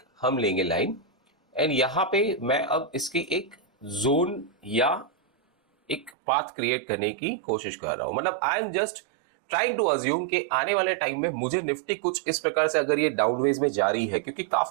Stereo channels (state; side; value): drops out; left; at 6.2 s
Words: हम लेंगे लाइन एंड यहां पे मैं अब इसकी एक जोन या एक पाथ क्रिएट करने की कोशिश कर रहा हूं। मतलब I am just trying to assume कि आने वाले टाइम में मुझे निफ्टी कुछ इस प्रकार से अगर ये डाउनवेज में जा रही है, क्योंकि